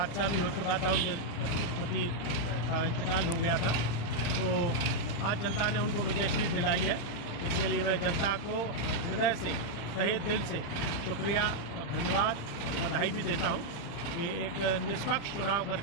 भी हो चुका था, उनके पति का इंतकाल हो गया था, तो आज जनता ने उनको विजयश्री दिलाई है। इसके लिए मैं जनता को हृदय से, तहे दिल से शुक्रिया और धन्यवाद और बधाई भी देता हूँ कि एक निष्पक्ष चुनाव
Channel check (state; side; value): late; right; 35 ms